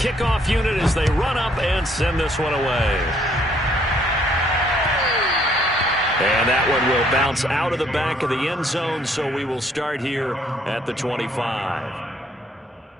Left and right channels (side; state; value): both; normal; correlation 0.65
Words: unit as they run up and send this one away. And that one will bounce out of the back of the end zone, so we will start here at the 25.